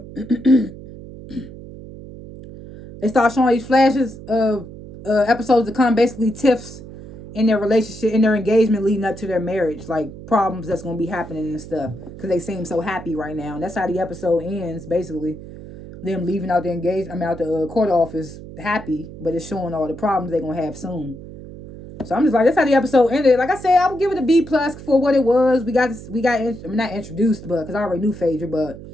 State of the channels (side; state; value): right; noise; hum, 14 dB below the sound